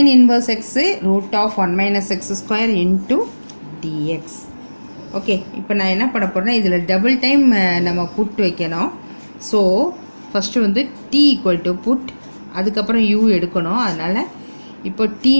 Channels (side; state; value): both; inverted; correlation -1.00